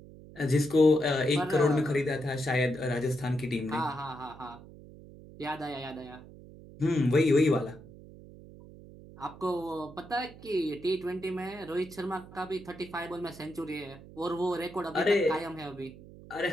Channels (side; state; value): right; noise; hum, 18 dB below the sound